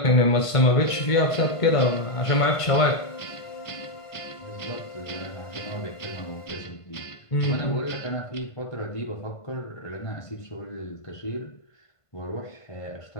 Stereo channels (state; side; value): late; right; 1.5 ms